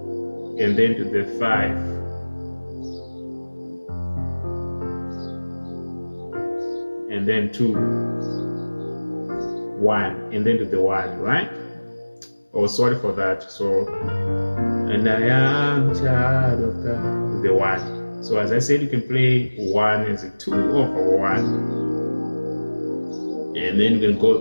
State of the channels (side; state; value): both; inverted; correlation -1.00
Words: and then to the 5. And then 2, 1, and then to the 1, right? Oh, sorry for that. So, and I am child of God, to the 1. So as I said, you can play 1 as a 2 over 1, and then you can